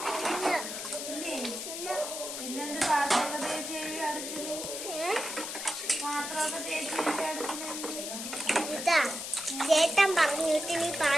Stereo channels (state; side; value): noise; left; hiss, 6 dB below the sound